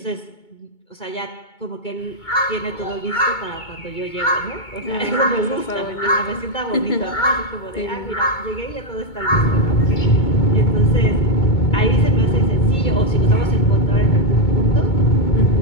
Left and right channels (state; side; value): late; right; 2.2 ms